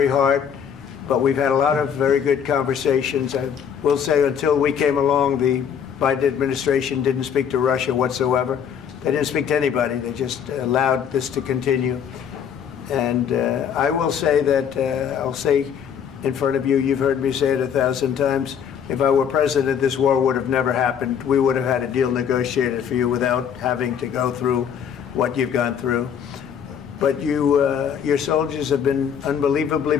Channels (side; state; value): right; quieter; 8.0 dB